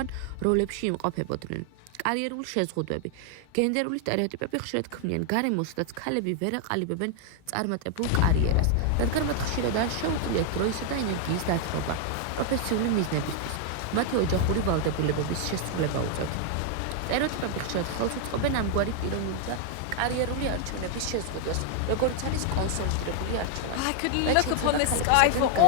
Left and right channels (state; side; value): different; both; correlation 0.00